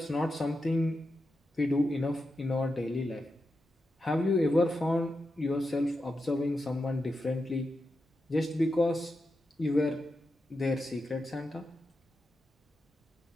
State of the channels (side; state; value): both; normal; correlation 0.88